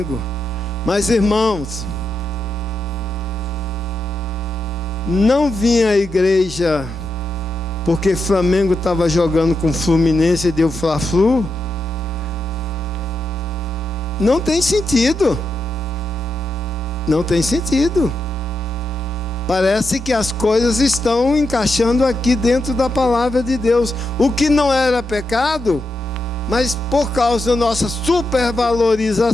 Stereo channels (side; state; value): both; normal; correlation 0.85